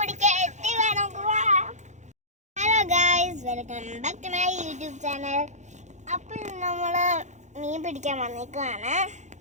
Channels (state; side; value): late; left; 0.34 ms